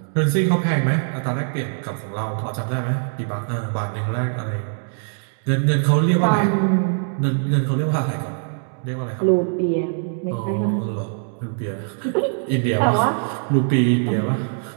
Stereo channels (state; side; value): silent; left; digital silence